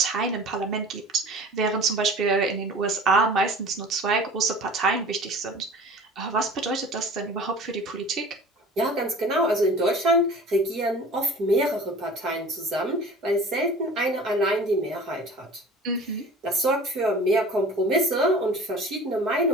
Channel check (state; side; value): normal; both; correlation 0.42